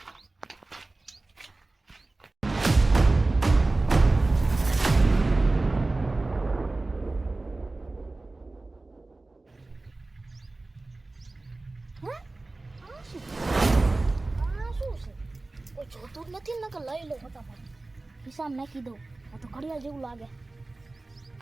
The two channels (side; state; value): left; quieter; 3.1 dB